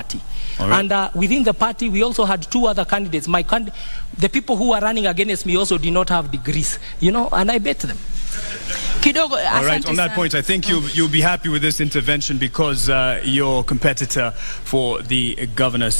Right. And within the party, we also had two other candidates. The people who were running against me also did not have degrees, and I bet them. All right, on that point, I think you'll be happy with this intervention because your competitor for the governor's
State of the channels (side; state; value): both; inverted; correlation -1.00